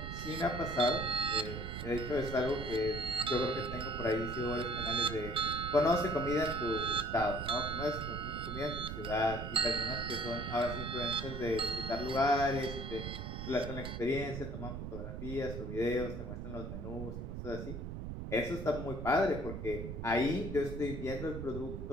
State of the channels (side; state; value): right; noise; rumble, 6 dB below the sound